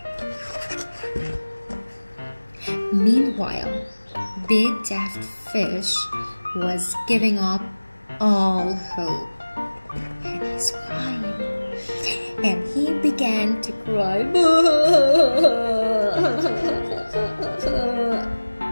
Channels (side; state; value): both; inverted; correlation -1.00